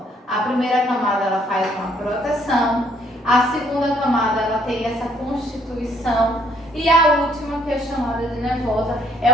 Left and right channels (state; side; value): normal; both; correlation 0.66